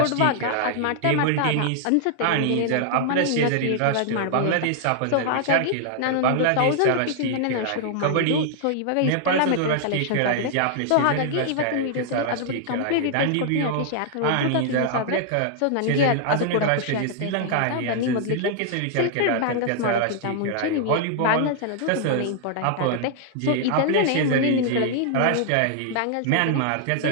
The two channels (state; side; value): different; both; correlation -0.01